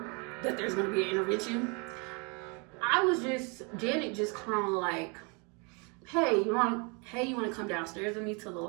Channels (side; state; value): left; quieter; 32.7 dB